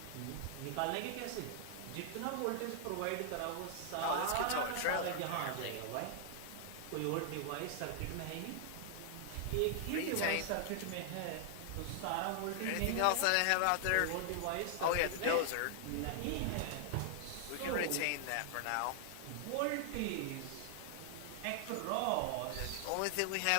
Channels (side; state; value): both; different; correlation 0.00